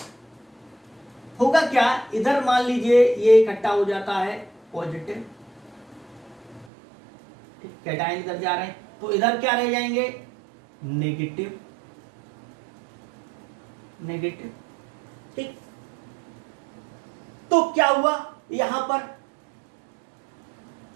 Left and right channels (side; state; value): left; drops out; at 6.7 s